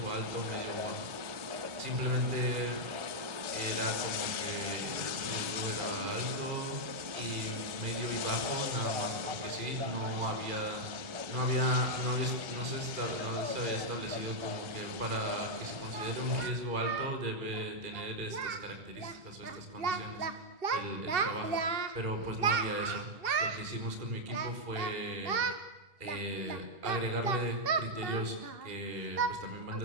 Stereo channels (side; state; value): left; late; 1.4 ms